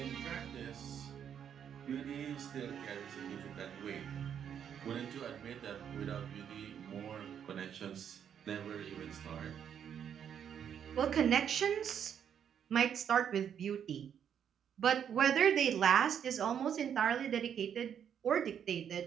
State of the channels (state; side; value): quieter; left; 8.6 dB